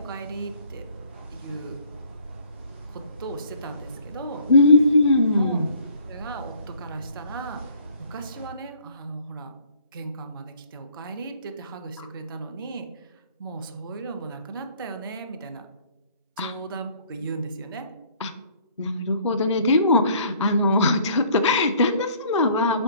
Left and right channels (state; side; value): inverted; both; correlation -0.57